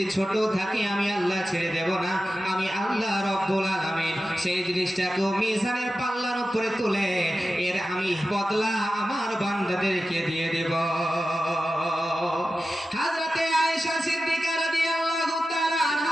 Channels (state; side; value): normal; both; correlation 0.93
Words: ছোট থাকে আমি আল্লাহ ছেড়ে দেব না। আমি আল্লাহ রাব্বুল আলামিন সেই জিনিসটাকে মিজানের পাল্লার উপরে তুলে এর আমি বদলা আমার বান্দাদেরকে দিয়ে দেব। হযরতে আয়েশা সিদ্দিকা রাদিয়াল্লাহু তাআলা